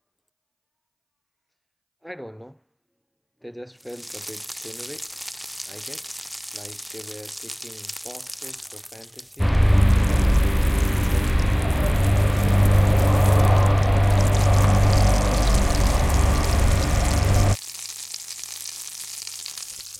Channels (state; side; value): identical; both; correlation 1.00